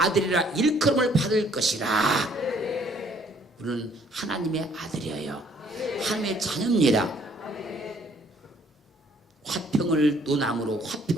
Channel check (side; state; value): both; normal; correlation 0.62